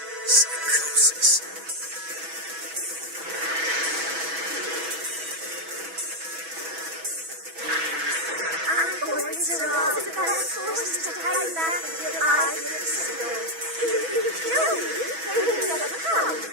psychosis. I'm going Zeraal to battle forces to hide back until I get a signal. If you kill me, they will never come.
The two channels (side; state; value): left; late; 6.1 ms